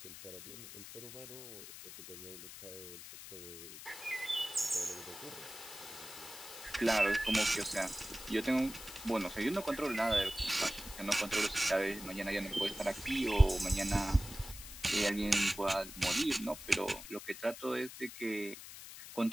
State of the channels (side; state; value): left; noise; hiss, 13 dB below the sound